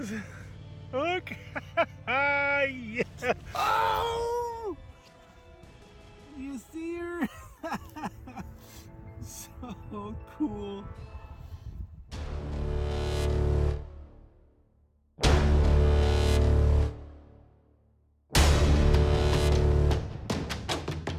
Look! Yeah! Oh! You see her? So cool.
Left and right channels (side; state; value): both; identical; correlation 1.00